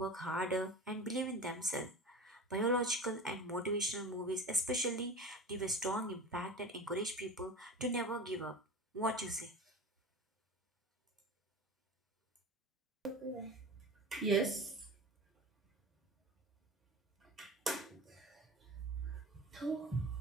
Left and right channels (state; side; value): normal; both; correlation 0.32